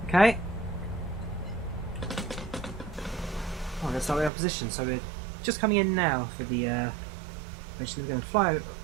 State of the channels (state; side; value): drops out; left; at 4.3 s